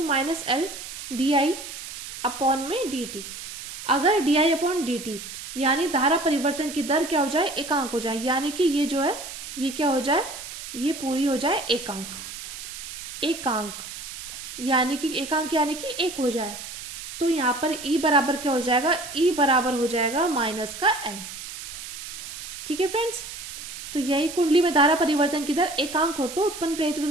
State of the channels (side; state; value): right; noise; hiss, 10 dB below the sound